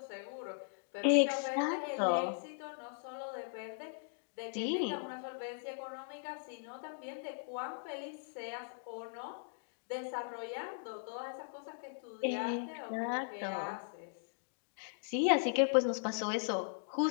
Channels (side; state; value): right; silent; digital silence